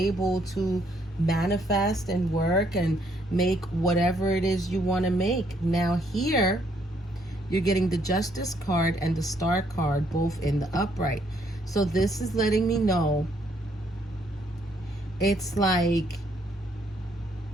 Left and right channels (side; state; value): both; normal; correlation 0.70